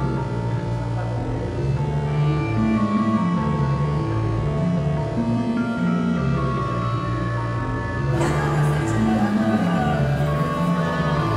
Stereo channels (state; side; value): identical; both; correlation 1.00